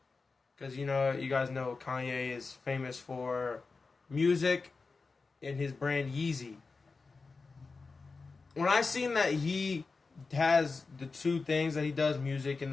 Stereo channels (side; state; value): right; quieter; 4.2 dB